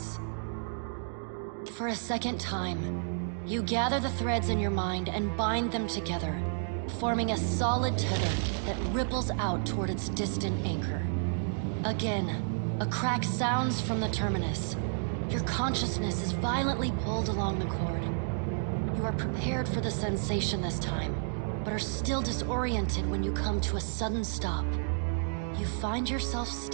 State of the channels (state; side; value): silent; left; digital silence